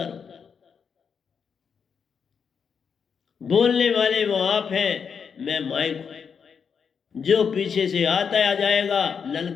रहूं। बोलने वाले वो आप हैं, मैं माइक हूं। जो पीछे से आता आ जाएगा,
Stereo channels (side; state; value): right; quieter; 6.5 dB